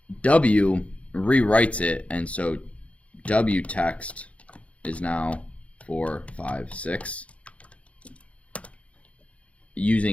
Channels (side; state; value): right; late; 0.064 ms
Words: W rewrites it, and so W text is now 4, 5, 6.